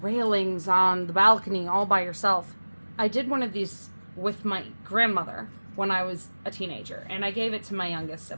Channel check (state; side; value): inverted; both; correlation -1.00